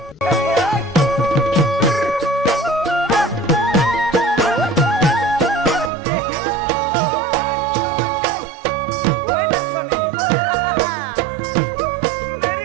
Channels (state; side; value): drops out; left; at 5.9 s